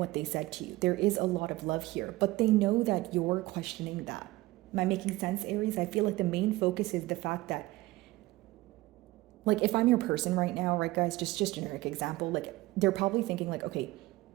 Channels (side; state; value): left; quieter; 19.0 dB